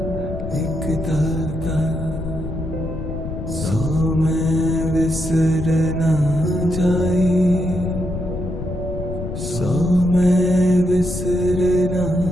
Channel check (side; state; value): left; noise; rumble, 7 dB below the sound